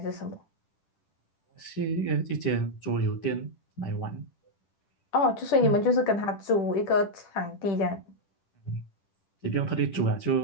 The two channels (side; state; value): right; late; 10 ms